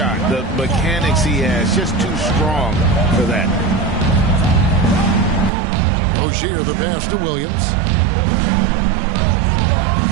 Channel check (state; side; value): drops out; left; at 5.5 s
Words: The mechanics he has just too strong for that. Rozier the pass to Williams.